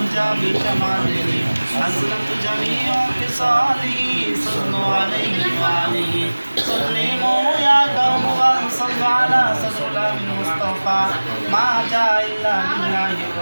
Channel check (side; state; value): both; inverted; correlation -1.00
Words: بشماله حسنت جميع خصاله صلوا عليه وآله سلموا يا قوم وصلوا على صدر المصطفى ما جاء إلا لله